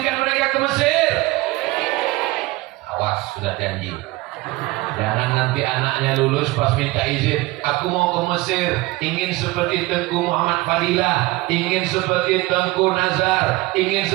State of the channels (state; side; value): quieter; left; 20.5 dB